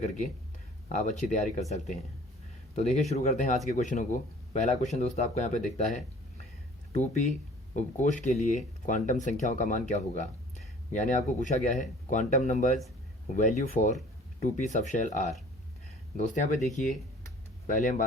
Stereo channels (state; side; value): normal; both; correlation 0.51